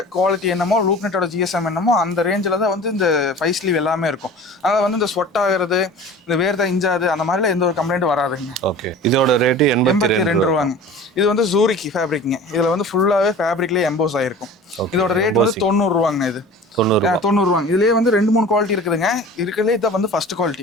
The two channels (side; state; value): both; normal; correlation 0.40